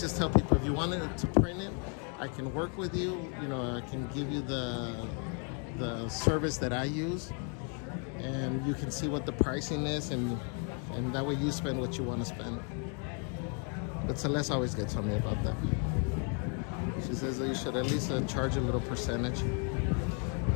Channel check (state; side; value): quieter; right; 40.0 dB